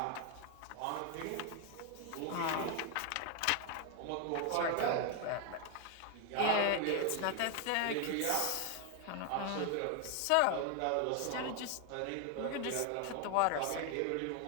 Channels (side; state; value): both; different; correlation 0.01